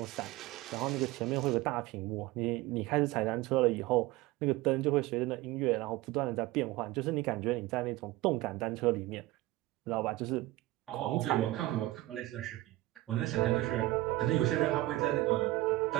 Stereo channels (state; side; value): quieter; left; 18.0 dB